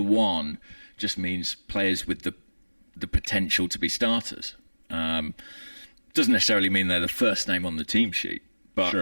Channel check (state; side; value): inverted; both; correlation -1.00